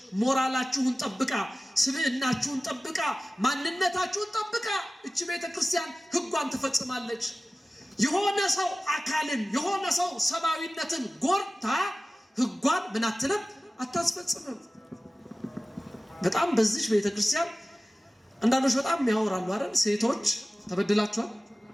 ሞራላችሁን ጠብቃ፣ ስብዕናችሁን ጠብቃ፣ ማንነታችሁን ጠብቃ እቺ ቤተክርስቲያን ሕጓን ትፈጽማለች። የሆነ ሰው አካልን የሆነ ሰው ሰብአዊነትን ጎርታ ሕጓን ምን አትልም? አታስፈጽምም። በጣም በዚች ቤተክርስቲያን አንዳንዶች በጣም ያወራሉ አይደል? ሴቶች ተበድላችኋል?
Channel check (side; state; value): both; normal; correlation 0.96